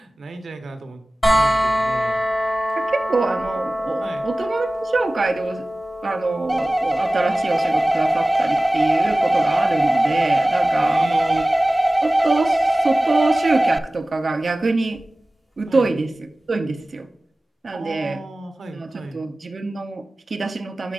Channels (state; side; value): normal; both; correlation 0.97